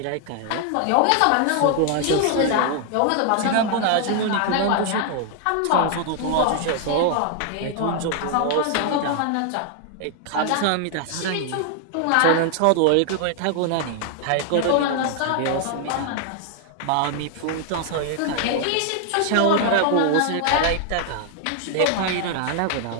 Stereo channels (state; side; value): different; both; correlation 0.00